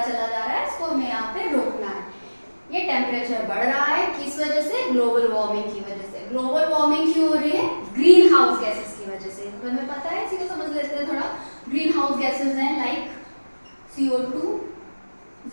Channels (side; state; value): both; inverted; correlation -1.00